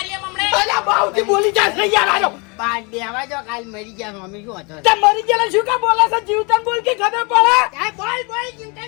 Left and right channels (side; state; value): right; quieter; 30.7 dB